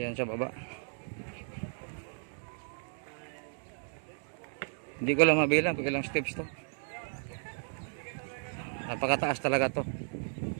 sa baba. Hindi ko lang mabilang kung ilang steps to. Napakataas talaga to.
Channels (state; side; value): silent; left; 55 dB below the other